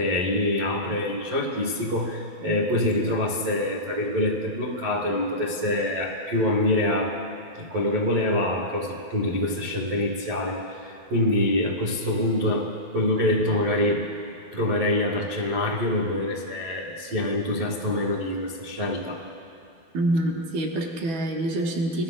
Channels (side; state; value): left; late; 12 ms